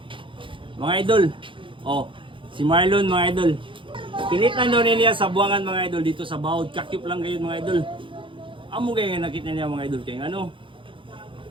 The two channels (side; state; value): left; late; 0.25 ms